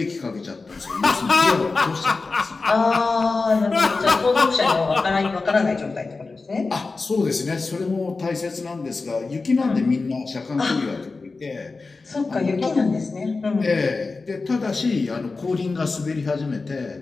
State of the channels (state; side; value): quieter; right; 3.9 dB